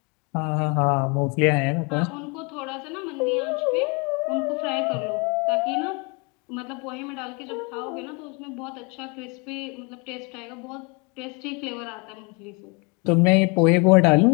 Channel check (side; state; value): right; quieter; 31.3 dB